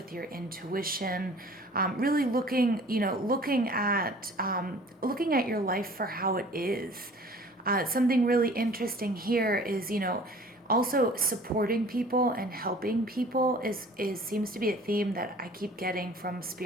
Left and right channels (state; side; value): normal; both; correlation 0.48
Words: your intuition, really looking at your life for how it is. Something really interesting here is, also supporting people and helping people is seems to be a theme that I keep getting from